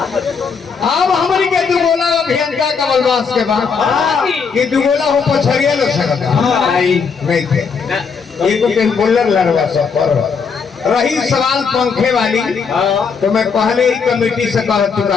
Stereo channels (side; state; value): right; quieter; 5.7 dB